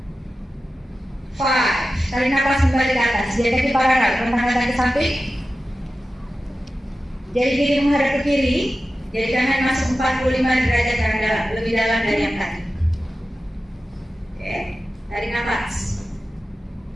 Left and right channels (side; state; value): both; normal; correlation 0.93